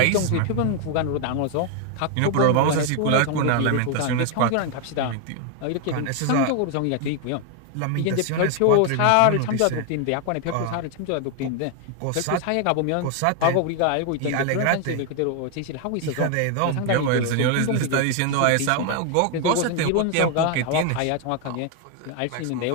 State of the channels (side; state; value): both; different; correlation 0.00